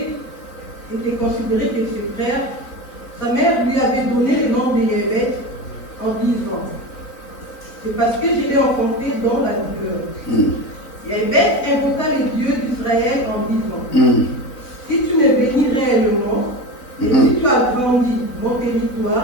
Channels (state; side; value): late; right; 3.9 ms